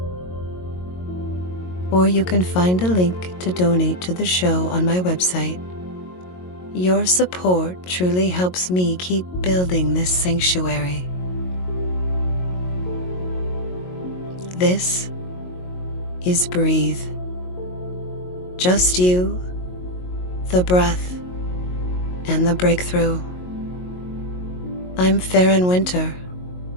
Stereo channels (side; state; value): right; late; 22 ms